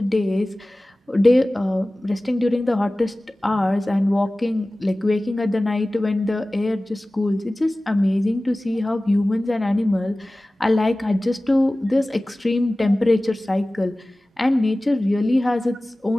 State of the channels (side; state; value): both; normal; correlation 0.97